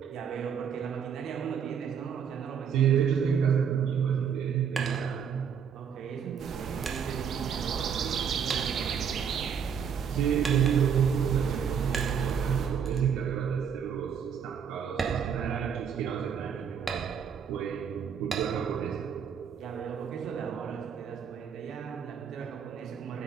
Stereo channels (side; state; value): left; quieter; 7.4 dB